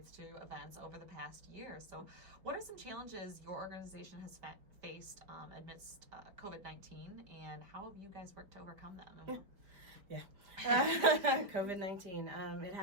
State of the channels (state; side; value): late; left; 4.7 ms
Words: to events over the past year. So what are some challenges your organization has faced amidst COVID-19, and how have you guys worked to overcome them? Yeah. COVID-19. It